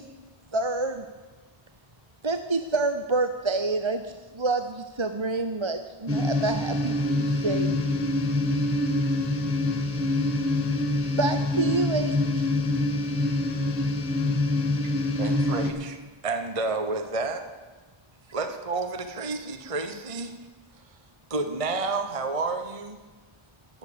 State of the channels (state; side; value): late; left; 1.5 ms